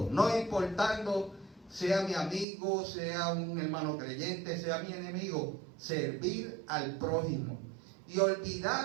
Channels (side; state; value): left; drops out; at 2.5 s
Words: no importando sea mi amigo, sea un hermano creyente, sea mi enemigo. Servir al prójimo y